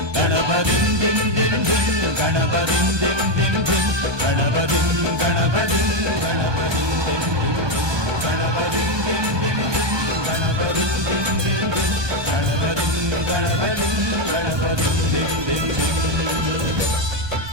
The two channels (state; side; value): late; left; 1.2 ms